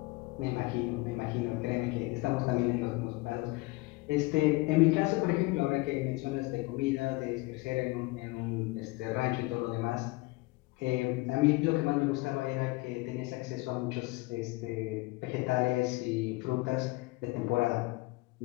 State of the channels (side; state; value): right; quieter; 22.7 dB